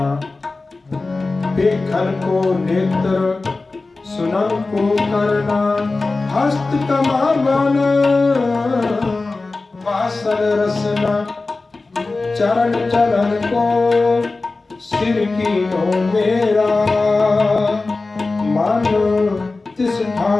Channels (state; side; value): quieter; right; 3.5 dB